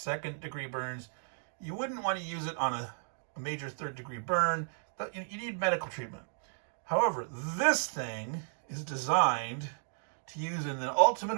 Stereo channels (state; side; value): silent; left; digital silence